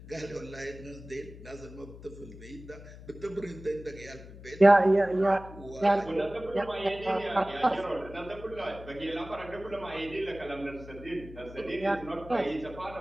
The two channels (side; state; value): left; noise; hum, 16 dB below the sound